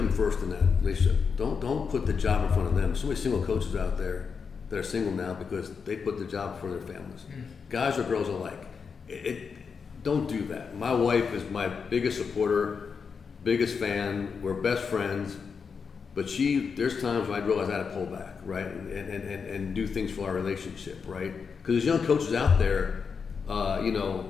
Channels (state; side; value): quieter; right; 5.8 dB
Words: first in that relationship. Don't put the job in front of them. So many single coaches out there that are single now because they put the job before their families. Guys or girls alike. Don't do that. My wife is my biggest supporter, biggest fan. We're best friends. But there's times when I realize I had to pull back, right, and do things for our relationship, right? Because there's young coaches out there,